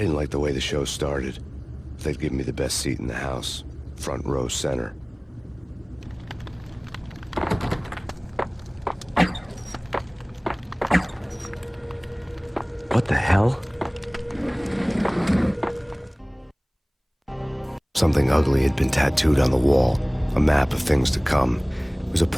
didn't like the way the show started. They'd give me the best seat in the house, front row center. What the hell? Something ugly had been tattooed on the wall, a map of things to come. It was a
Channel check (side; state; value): both; identical; correlation 1.00